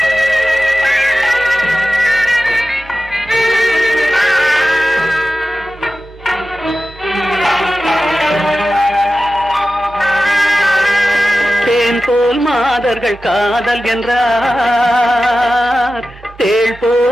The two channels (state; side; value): normal; both; correlation 0.94